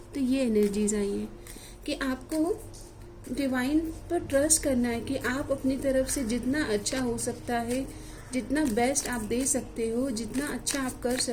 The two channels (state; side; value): identical; both; correlation 1.00